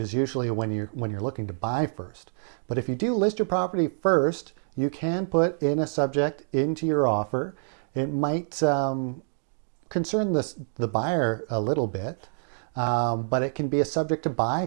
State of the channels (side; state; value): left; silent; digital silence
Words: usually when you're looking to buy first. But if you do list your property first, you can put in a subject into your offer. It might concern the buyer a little bit, but it can be a subject to buy